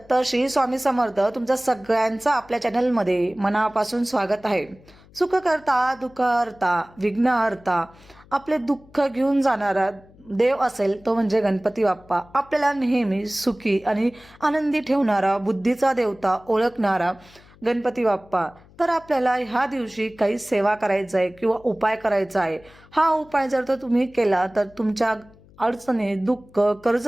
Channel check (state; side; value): noise; left; hum, 26 dB below the sound